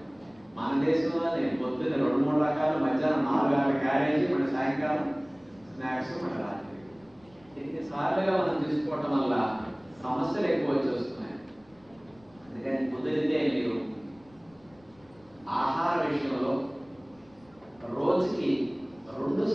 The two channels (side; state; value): left; noise; rumble, 30 dB below the sound